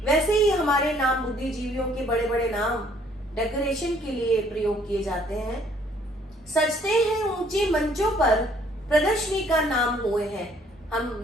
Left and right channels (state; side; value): normal; both; correlation 0.62